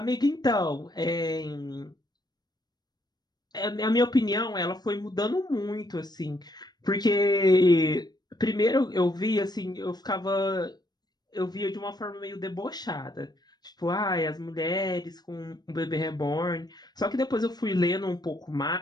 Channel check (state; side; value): late; right; 0.20 ms